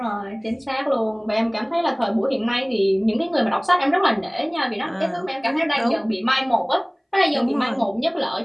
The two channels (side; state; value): both; identical; correlation 1.00